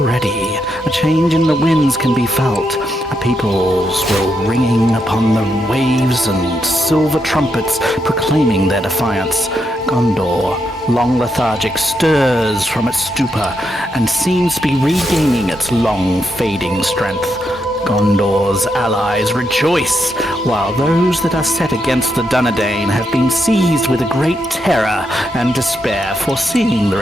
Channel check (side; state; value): both; normal; correlation 0.81